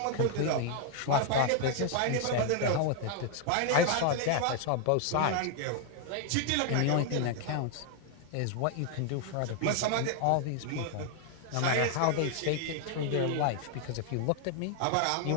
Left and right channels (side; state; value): both; different; correlation 0.00